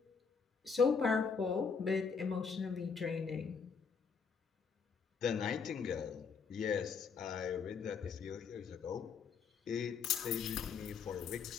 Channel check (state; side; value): quieter; right; 5.8 dB